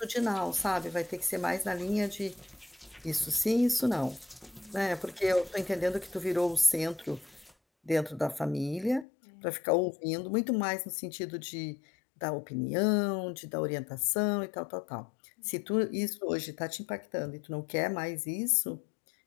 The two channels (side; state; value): right; drops out; at 9.1 s